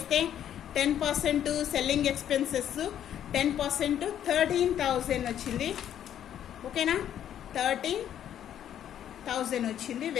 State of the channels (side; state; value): right; quieter; 10.3 dB